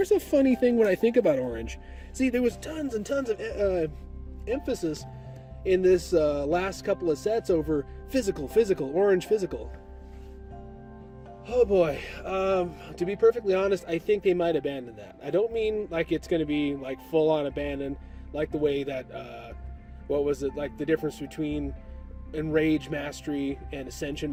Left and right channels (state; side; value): identical; both; correlation 1.00